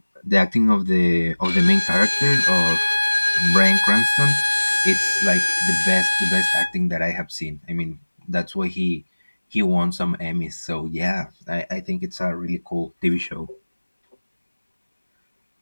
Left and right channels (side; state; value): both; inverted; correlation -1.00